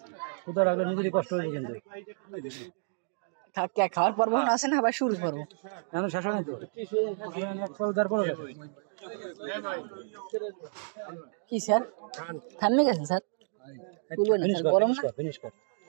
কোথাও রাখলে নিজেরই কষ্ট হয়েছে কিন্তু খাওয়ার পর্ব আছে না আবার শুরু করবো এখন শেষ হয় তো কি স্যার থামে গেছেন স্যার ফিনিশ কর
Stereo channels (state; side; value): silent; left; digital silence